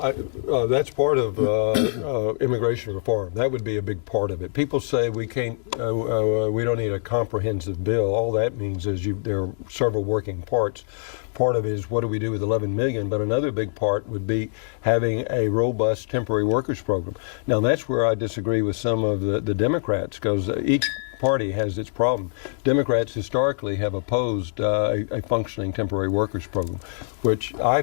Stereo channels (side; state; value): right; silent; digital silence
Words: that's part of immigration reform. That would be a big part of it. People say we can't, we don't need a comprehensive bill. All that means is there are several working parts. Part of it is what do we do with 11 million, but another big part would be having a robust temporary workers program. Now that's where I disagree with some of the Democrats, because each party has its problem. Democrats historically have opposed a functioning temporary workers program, which I